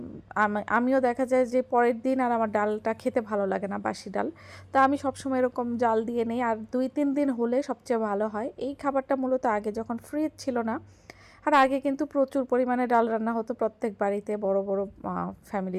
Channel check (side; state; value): both; identical; correlation 1.00